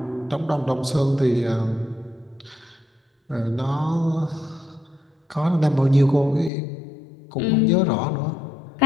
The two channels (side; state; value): right; drops out; at 6.5 s